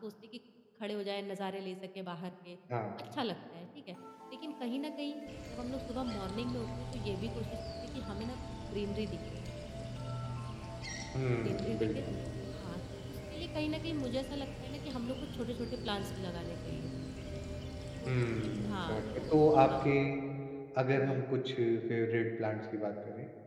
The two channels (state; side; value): identical; both; correlation 1.00